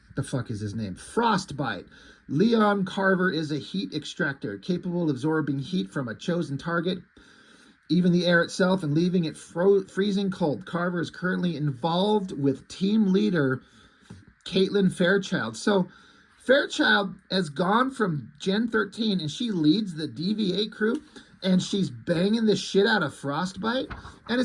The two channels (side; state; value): both; identical; correlation 1.00